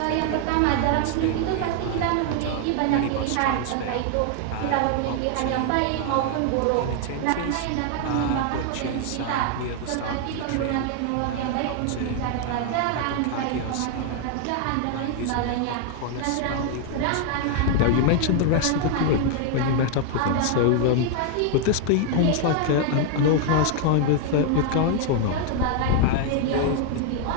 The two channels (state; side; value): different; both; correlation 0.00